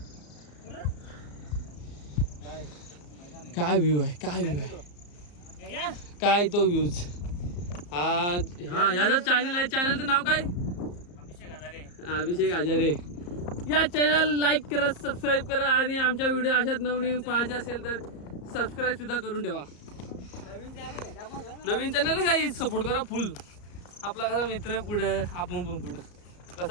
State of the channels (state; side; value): late; right; 34 ms